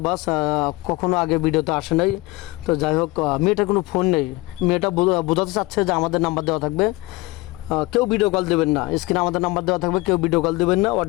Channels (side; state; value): right; quieter; 21.9 dB